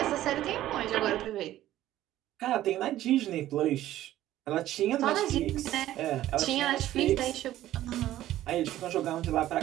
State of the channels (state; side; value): quieter; left; 13.8 dB